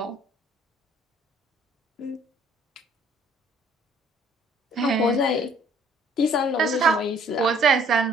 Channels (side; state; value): both; normal; correlation 0.59